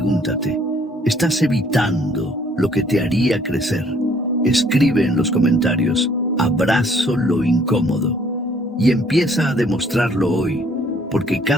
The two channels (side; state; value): both; normal; correlation 0.61